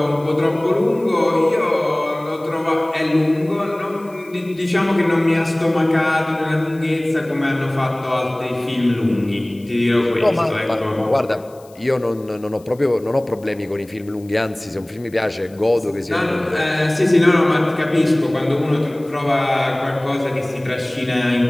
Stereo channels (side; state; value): left; noise; hiss, 28 dB below the sound